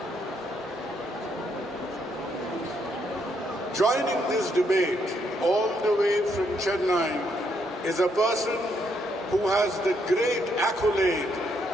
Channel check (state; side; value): normal; both; correlation 0.74